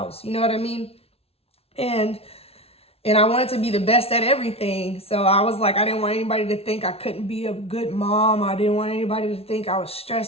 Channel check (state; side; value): late; right; 0.29 ms